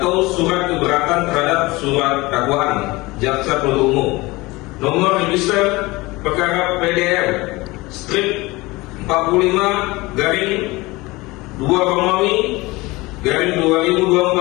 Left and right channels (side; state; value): right; quieter; 21.9 dB